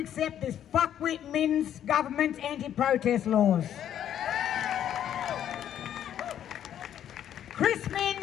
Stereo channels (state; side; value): quieter; right; 10.3 dB